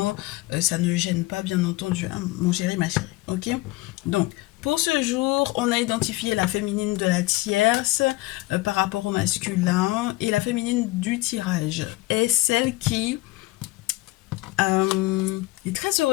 Ça ne gêne pas bien entendu, hein, mon chéri ma chérie, ok. Donc pour ce jour, on a identifié la féminine de la tierce par rapport au masculin, et la féminine du tirage est celle qui est très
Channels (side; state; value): right; quieter; 19.9 dB